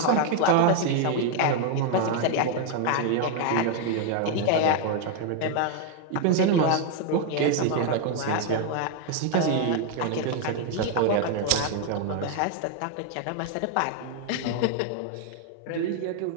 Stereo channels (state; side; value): different; both; correlation 0.00